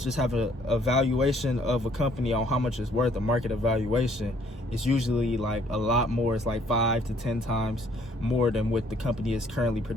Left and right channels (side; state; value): both; normal; correlation 0.62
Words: have a valuation of a company on how much it's worth, a market evaluation, it's usually like a lot more. It's like 5 to 10 times more than what the company is currently